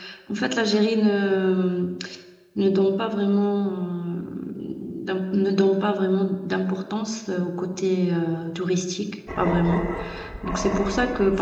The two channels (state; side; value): identical; both; correlation 1.00